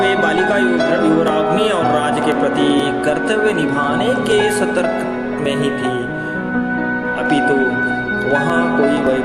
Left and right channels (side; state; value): both; identical; correlation 1.00